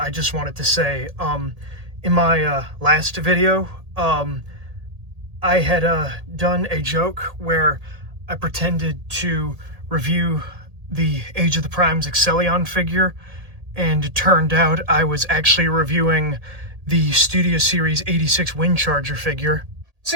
just wanted to say, in my last video, I had done a joke where I pretended to review the Age of the Prime's Excellion figure, and it turned out I was actually reviewing the Studio Series 86 Windcharger figure.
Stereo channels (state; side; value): late; left; 1.8 ms